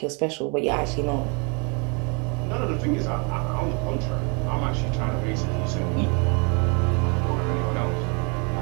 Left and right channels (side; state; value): left; quieter; 33.8 dB